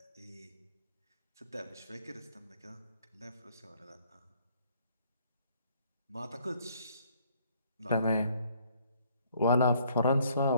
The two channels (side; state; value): both; inverted; correlation -0.63